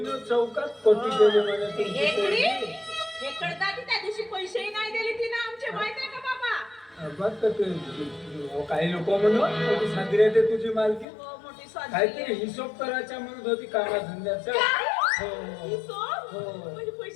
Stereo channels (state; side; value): drops out; right; at 11.1 s